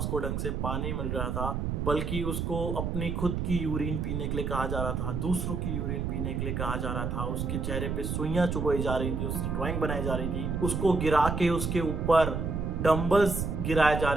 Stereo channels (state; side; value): noise; right; rumble, 1 dB below the sound